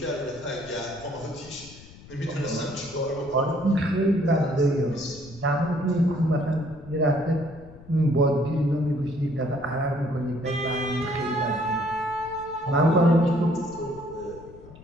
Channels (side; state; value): left; noise; rumble, 19 dB below the sound